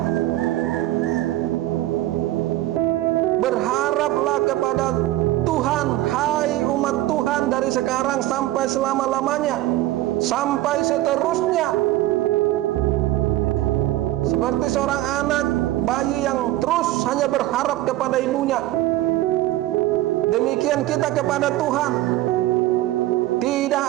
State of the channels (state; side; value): quieter; left; 15.8 dB